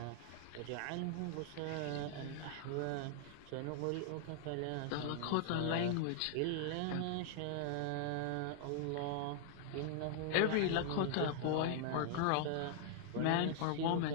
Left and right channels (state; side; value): different; both; correlation -0.01